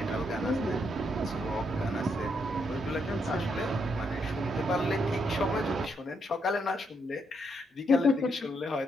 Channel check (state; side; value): normal; both; correlation 0.78